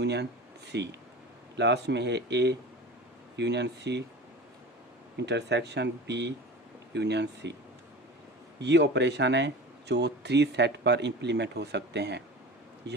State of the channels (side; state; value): both; normal; correlation 0.34